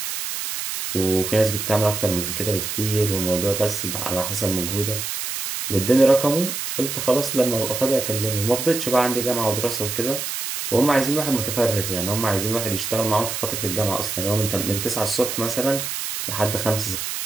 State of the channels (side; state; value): right; noise; hiss, 4 dB below the sound